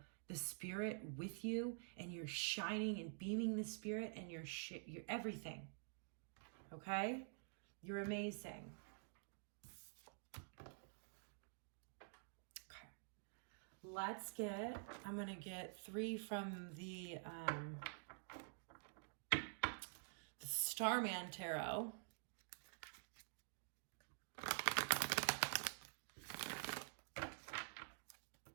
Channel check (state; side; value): silent; left; digital silence